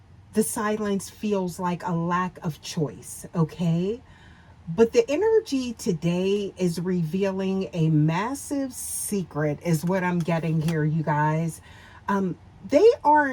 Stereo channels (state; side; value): identical; both; correlation 1.00